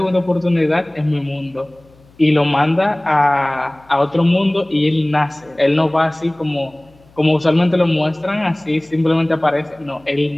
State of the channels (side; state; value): left; noise; hum, 29 dB below the sound